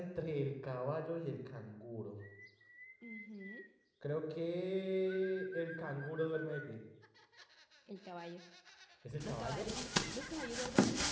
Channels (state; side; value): identical; both; correlation 1.00